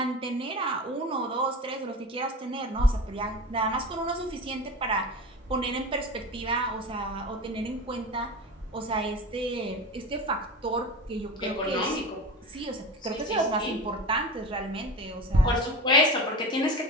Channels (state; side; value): normal; both; correlation 0.30